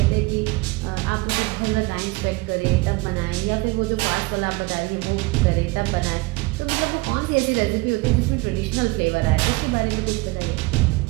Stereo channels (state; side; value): quieter; left; 24.2 dB